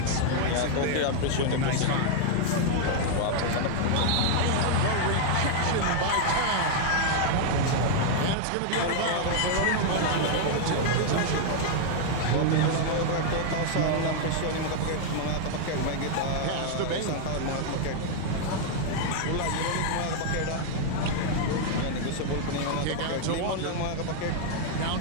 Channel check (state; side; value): different; both; correlation 0.00